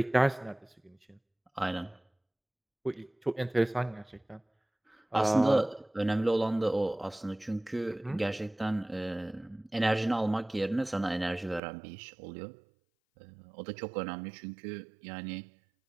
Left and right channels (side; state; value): left; drops out; at 11.6 s